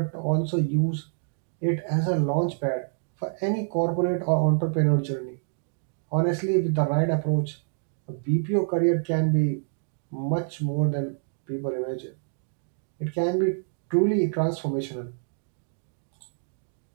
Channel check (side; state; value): left; silent; digital silence